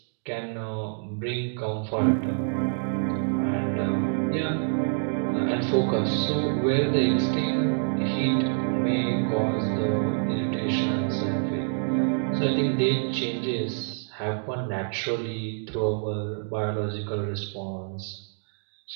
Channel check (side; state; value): left; silent; digital silence